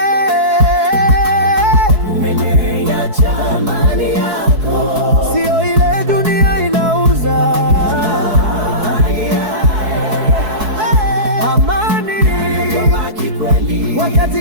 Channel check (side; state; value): left; late; 4.7 ms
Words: Umeniacha, amani yako sio ile dunia inauza. Amani